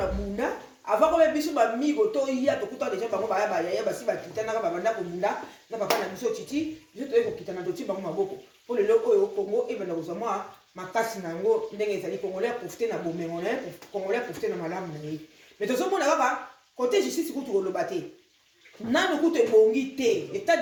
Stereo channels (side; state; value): both; identical; correlation 1.00